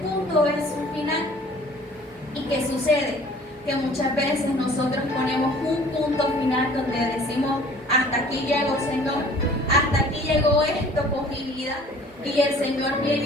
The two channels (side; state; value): both; normal; correlation 0.51